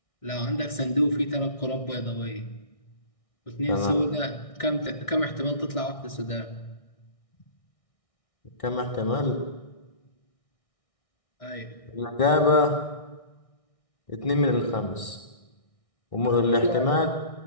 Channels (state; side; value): late; right; 1.6 ms